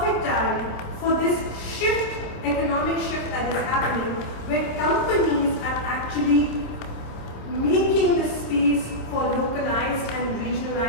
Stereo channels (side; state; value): right; late; 27 ms